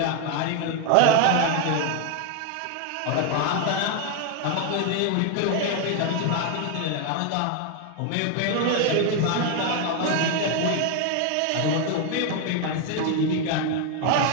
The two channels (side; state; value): both; different; correlation 0.01